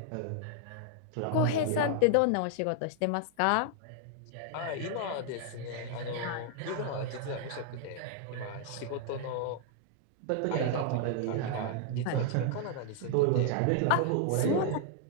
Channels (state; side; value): different; both; correlation 0.00